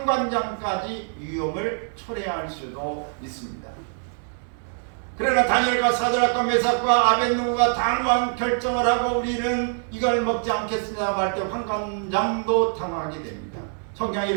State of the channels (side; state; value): left; silent; 62 dB below the other